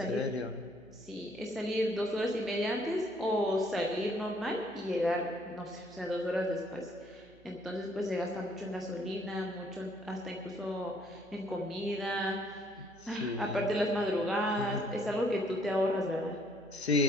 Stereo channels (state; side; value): noise; right; hum, 26 dB below the sound